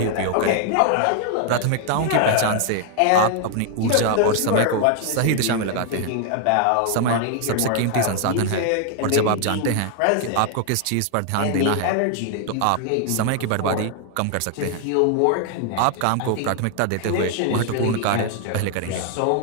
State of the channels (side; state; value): both; different; correlation 0.00